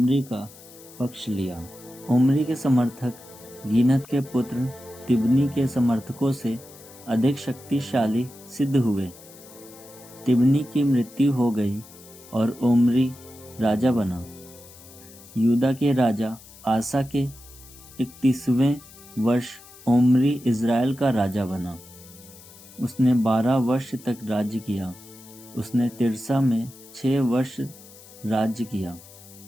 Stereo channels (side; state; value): left; noise; hiss, 21 dB below the sound